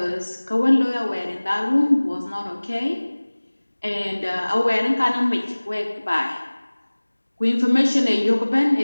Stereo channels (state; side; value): inverted; both; correlation -1.00